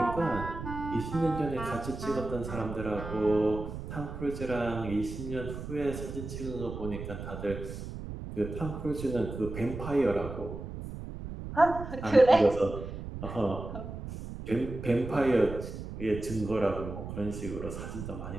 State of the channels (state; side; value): noise; right; rumble, 8 dB below the sound